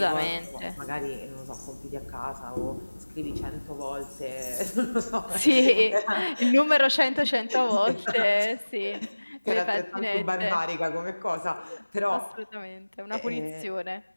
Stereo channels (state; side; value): inverted; both; correlation -1.00